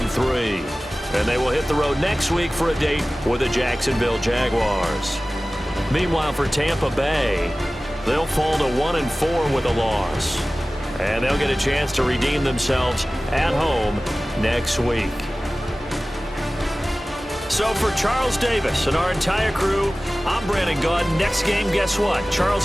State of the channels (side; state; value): both; normal; correlation 0.97